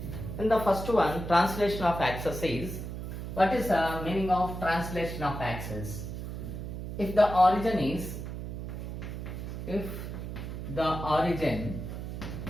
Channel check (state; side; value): noise; right; hum, 7 dB below the sound